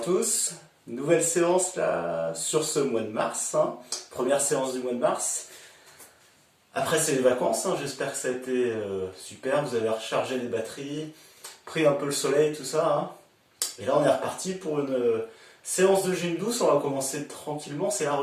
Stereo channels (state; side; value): identical; both; correlation 1.00